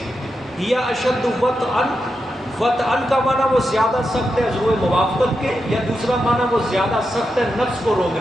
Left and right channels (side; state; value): both; normal; correlation 0.87